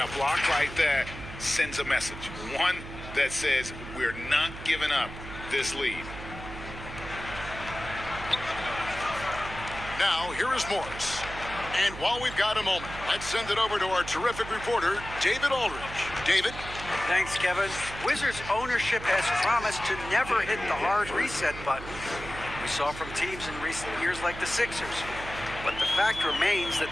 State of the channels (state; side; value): noise; right; hum, 11 dB below the sound